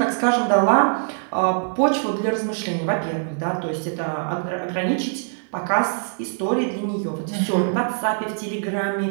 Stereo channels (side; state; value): left; silent; 63 dB below the other